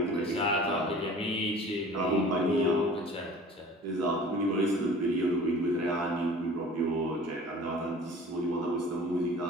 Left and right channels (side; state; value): both; normal; correlation 0.44